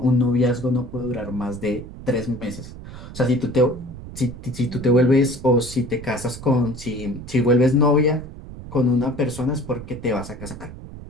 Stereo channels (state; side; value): noise; right; rumble, 13 dB below the sound